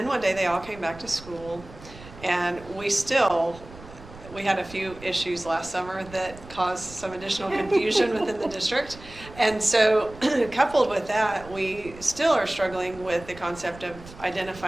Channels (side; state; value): right; noise; rumble, 18 dB below the sound